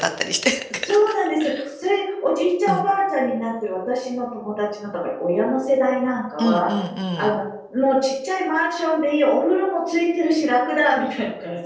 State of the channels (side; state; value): both; identical; correlation 1.00